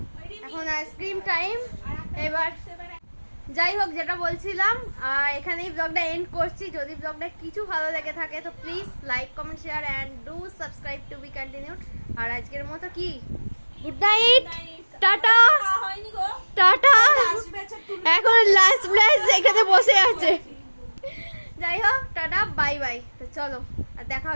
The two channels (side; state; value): both; inverted; correlation -1.00